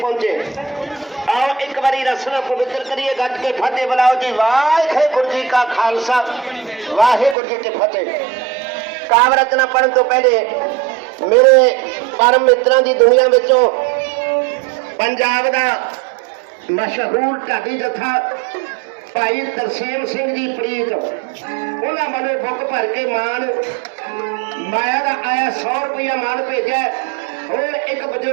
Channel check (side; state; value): left; drops out; at 7.4 s